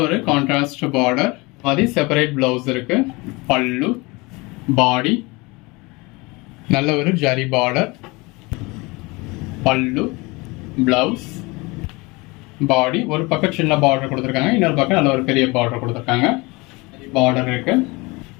ஒரு கான்ட்ராஸ்ட் பார்டர், மாதிரி செப்பரேட் பிளவுஸ் இருக்கு. பல்லு, பாடி, நல்ல ஒரு ஜரி பார்டர், பல்லு, பிளவுஸ், பாடி. ஒரு பக்கம் சின்ன பார்டர் கொடுத்துருக்காங்க, இன்னொரு பக்கம் நல்ல ஒரு பெரிய பார்டர் கொடுத்துருக்காங்க. பார்டர் இருக்கு.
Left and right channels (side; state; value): right; quieter; 24.9 dB